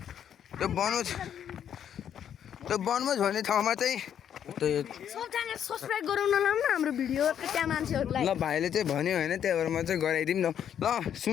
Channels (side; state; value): right; quieter; 9.2 dB